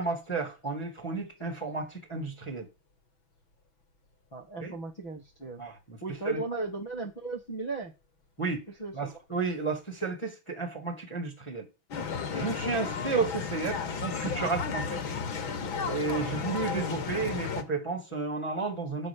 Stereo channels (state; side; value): late; right; 6.1 ms